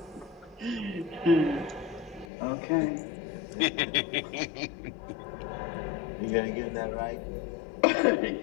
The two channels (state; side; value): drops out; right; at 2.2 s